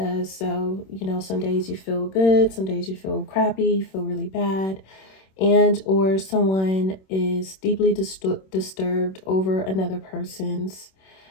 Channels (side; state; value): right; late; 26 ms